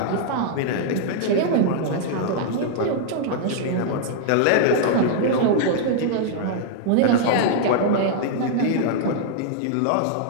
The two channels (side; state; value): both; different; correlation -0.01